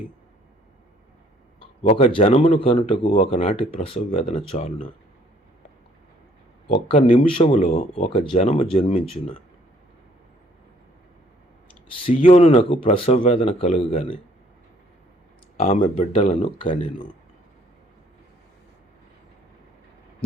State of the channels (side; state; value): both; normal; correlation 0.62